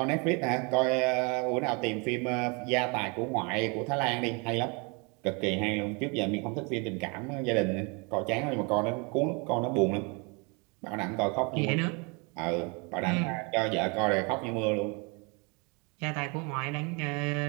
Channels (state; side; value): quieter; left; 31.3 dB